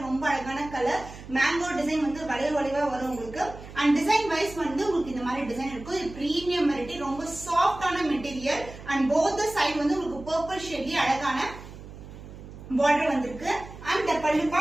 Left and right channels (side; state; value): right; noise; hum, 15 dB below the sound